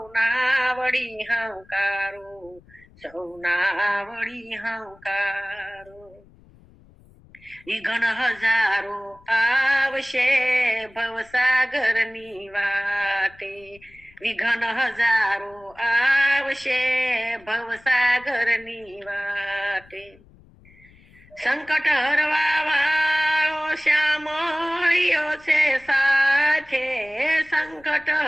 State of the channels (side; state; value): left; noise; rumble, 27 dB below the sound